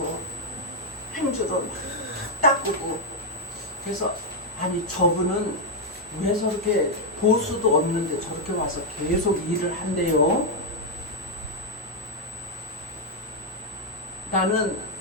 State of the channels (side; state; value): both; normal; correlation -0.01